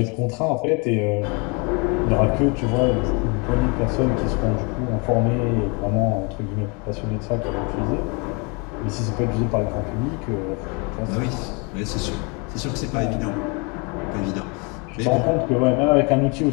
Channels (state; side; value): quieter; right; 31.7 dB